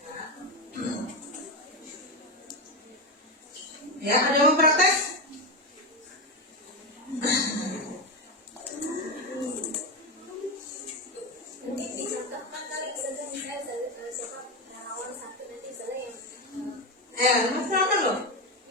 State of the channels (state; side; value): normal; both; correlation 0.12